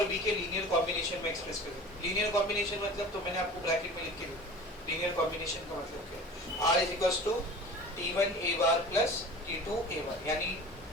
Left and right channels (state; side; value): normal; both; correlation 0.39